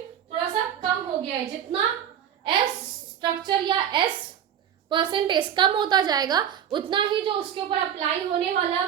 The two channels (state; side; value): quieter; left; 9.5 dB